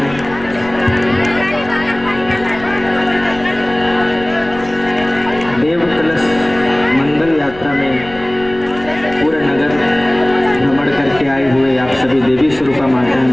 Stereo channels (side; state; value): left; noise; rumble, 17 dB below the sound